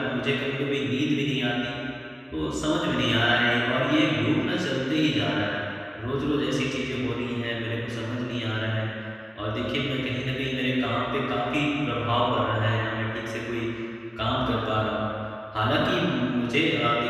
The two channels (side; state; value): both; identical; correlation 1.00